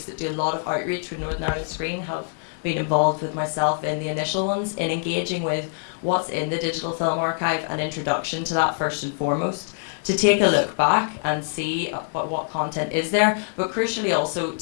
that do a lot of outreach with Northern Ireland Screen have been involved with myself in the initial ones in engaging with what's in the digital film archive and introduction to that first and foremost, to take a look back and see what content is there, but crucially also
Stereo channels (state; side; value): silent; right; 62 dB below the other